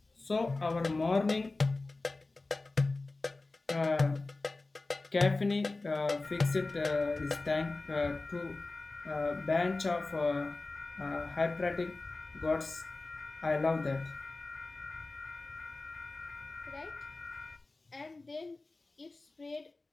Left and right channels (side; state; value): right; quieter; 3.3 dB